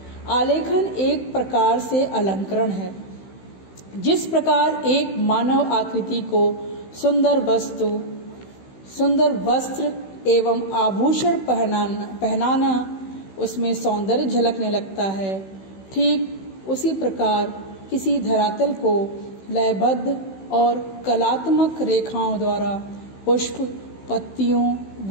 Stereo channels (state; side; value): late; right; 16 ms